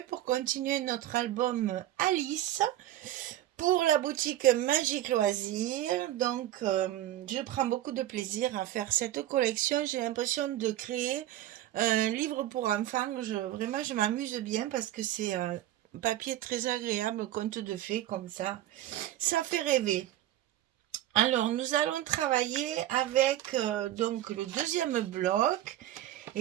pour continuer notre album Alice pour la boutique Magique Loisirs. Donc, je prends beaucoup de plaisir à faire cette collection. J'ai l'impression de créer un livre pour enfants. Vraiment, je m'amuse bien parce que c'est un papier très agréable, conte de fées comme ça. Ça fait rêver. Alors, nous allons travailler avec donc le deuxième bloc.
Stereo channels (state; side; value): quieter; left; 13.5 dB